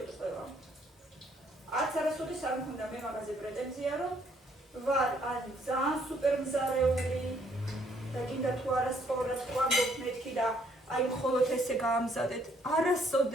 ყველა. არც არასოდეს არ მქონდა მე მაგაზე პრეტენზია რომ ვარ ან ძალიან სუპერ მზარეული და გინდა თუ არა სწორად ვამბობ მეთქი და აი მხოლოდ ესე გაამზადეთ.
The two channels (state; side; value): normal; both; correlation 0.67